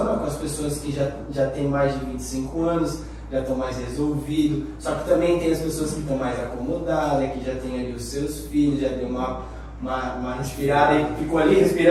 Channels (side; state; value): both; identical; correlation 1.00